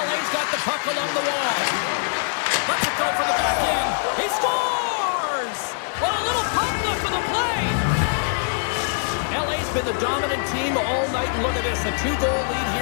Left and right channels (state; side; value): silent; right; digital silence